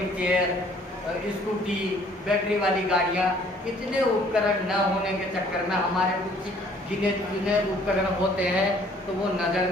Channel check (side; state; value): both; normal; correlation 0.58